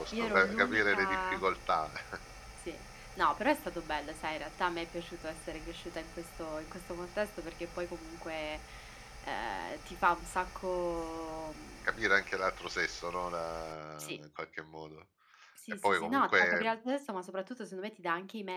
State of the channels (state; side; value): identical; both; correlation 1.00